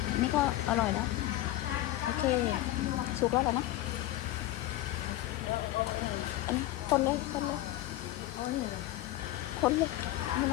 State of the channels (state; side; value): quieter; right; 15.6 dB